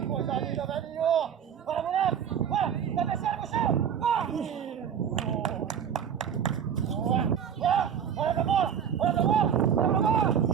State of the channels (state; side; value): quieter; left; 8.3 dB